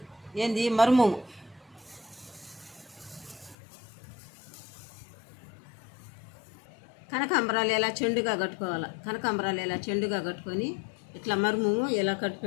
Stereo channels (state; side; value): drops out; right; at 3.6 s